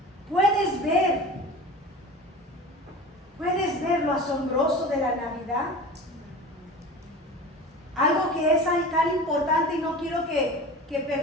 ¿Puedes ver lo asombroso de la Navidad? Algo que es tan importante y no quiero que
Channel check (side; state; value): both; normal; correlation 0.35